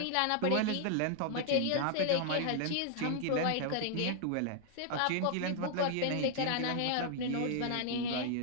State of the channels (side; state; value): both; different; correlation 0.00